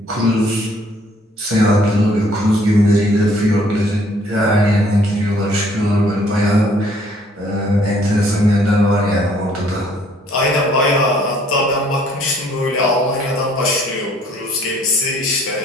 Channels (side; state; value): both; normal; correlation 0.61